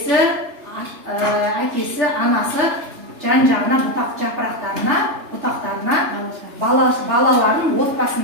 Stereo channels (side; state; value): left; late; 3.3 ms